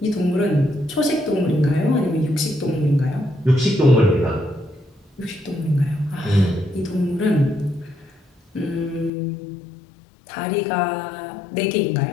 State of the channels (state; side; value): drops out; right; at 9.1 s